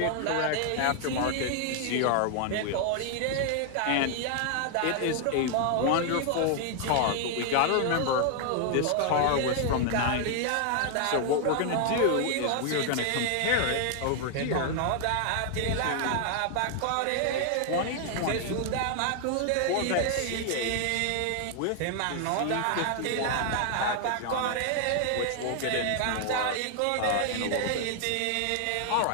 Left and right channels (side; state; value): both; different; correlation 0.00